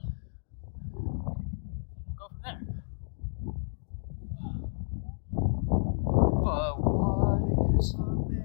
We'll go from there. But what is a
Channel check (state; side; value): silent; right; digital silence